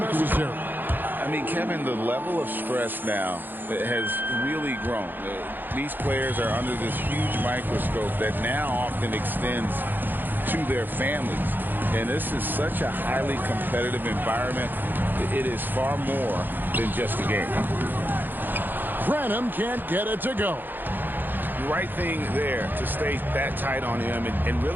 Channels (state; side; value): late; left; 0.091 ms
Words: I mean, Kevin, the level of stress now has really grown. These players are under this huge microscope that now often extends to their families. And this is such a highly competitive environment. It is far more than just a game. Branham can't get it to go. Right thing there to stay that tight on him and